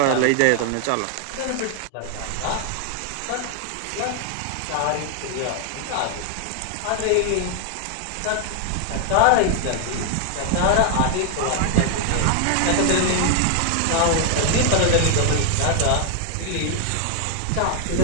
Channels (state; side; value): different; both; correlation 0.00